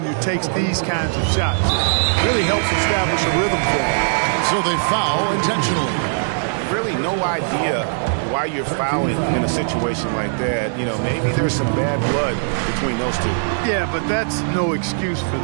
takes these kinds of shots. It really helps establish a rhythm for him. And so they foul intentionally. Really no idea why you're fouling in a situation like that. You know, maybe there's some bad blood between those two. Yeah, but that's no excuse for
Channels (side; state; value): left; silent; 66 dB below the other